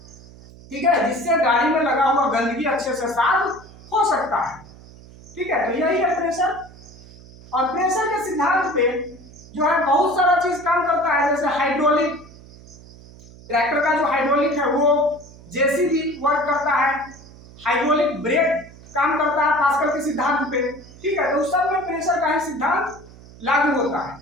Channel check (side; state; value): right; noise; hum, 21 dB below the sound